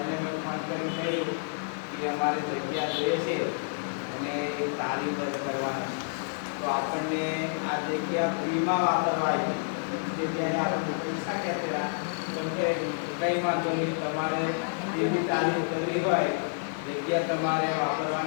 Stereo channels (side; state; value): right; silent; digital silence